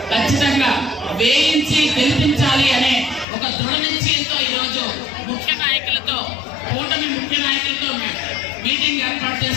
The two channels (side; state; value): right; drops out; at 3.2 s